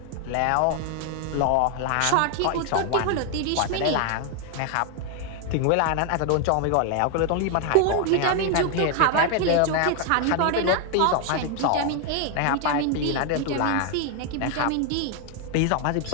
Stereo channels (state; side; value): different; both; correlation 0.00